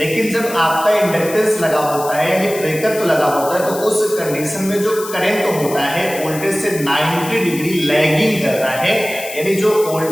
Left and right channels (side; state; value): left; noise; hiss, 12 dB below the sound